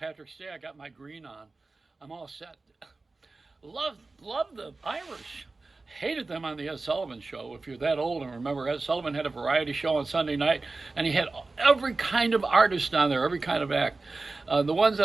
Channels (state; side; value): quieter; left; 3.5 dB